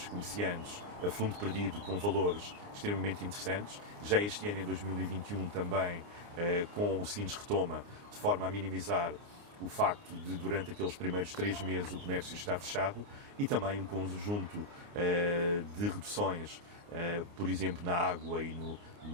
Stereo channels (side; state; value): left; late; 29 ms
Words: comerciantes a fundo perdido com valores extremamente interessantes. Já este ano, em 2021, também com o Sines Retoma, de forma a minimizar o facto de, durante aqueles primeiros 3 meses, o comércio estar fechado, e também um conjunto de reduções, por exemplo, na água e